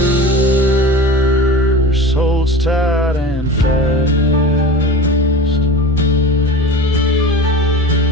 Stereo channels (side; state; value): both; normal; correlation 0.33